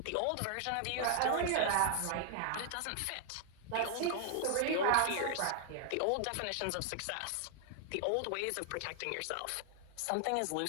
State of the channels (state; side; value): different; both; correlation 0.00